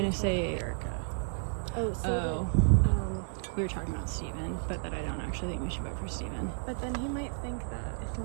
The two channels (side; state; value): left; silent; digital silence